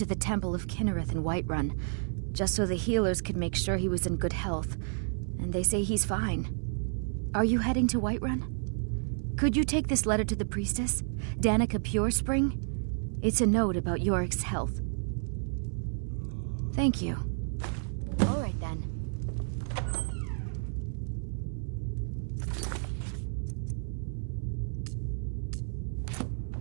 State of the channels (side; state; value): left; silent; 57 dB below the other